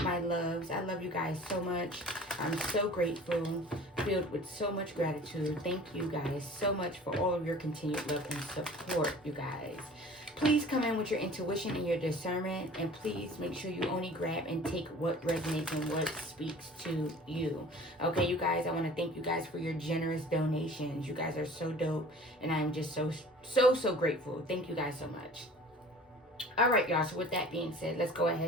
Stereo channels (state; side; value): normal; both; correlation 0.45